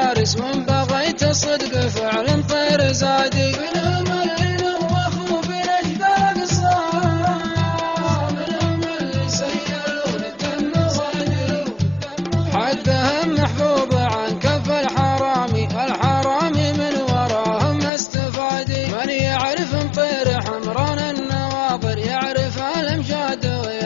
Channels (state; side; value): drops out; right; at 17.9 s